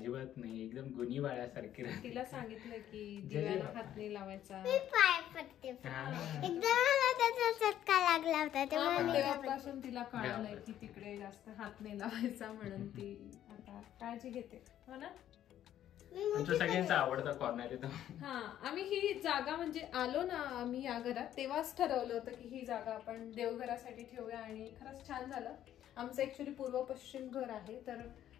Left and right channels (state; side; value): quieter; right; 11.5 dB